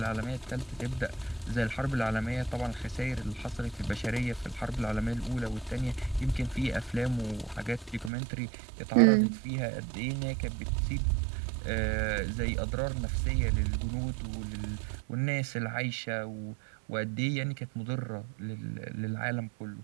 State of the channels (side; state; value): left; drops out; at 8.1 s